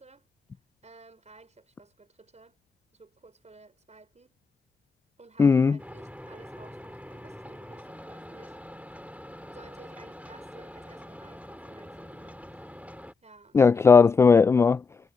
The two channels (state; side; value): quieter; right; 4.9 dB